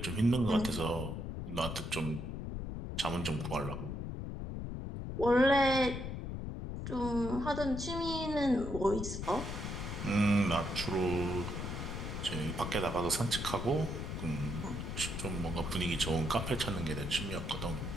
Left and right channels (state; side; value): noise; left; rumble, 5 dB below the sound